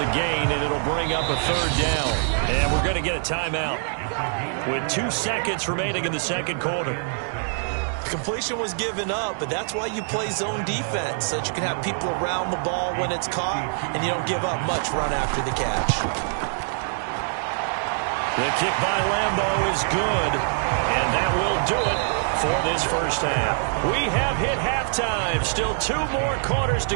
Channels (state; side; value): silent; left; digital silence